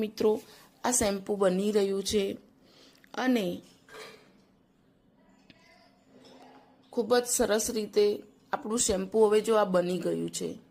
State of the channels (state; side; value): identical; both; correlation 1.00